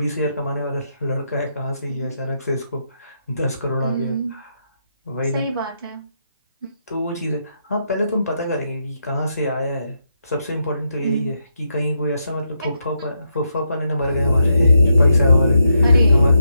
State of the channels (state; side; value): inverted; both; correlation -0.82